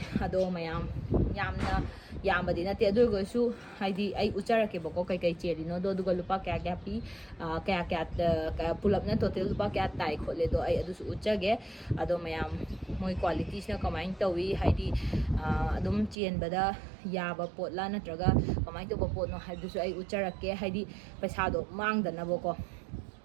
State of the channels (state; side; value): drops out; left; at 16.2 s